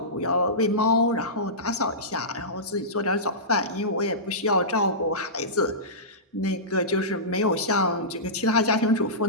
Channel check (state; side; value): normal; both; correlation -0.18